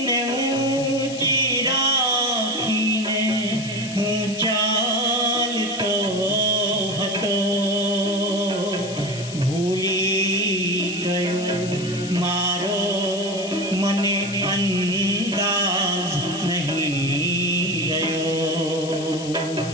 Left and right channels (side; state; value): left; noise; hiss, 12 dB below the sound